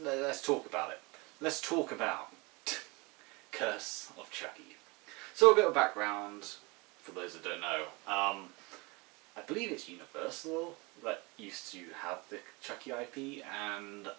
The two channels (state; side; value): quieter; left; 26.7 dB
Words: talk about it. Let's talk about Curse of Chucky. So a bit of background, for those that don't know. I believe it's Universal that used to have the Chucky IP, and